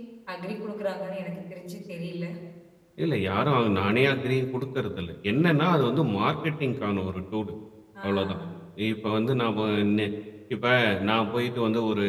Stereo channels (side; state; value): both; identical; correlation 1.00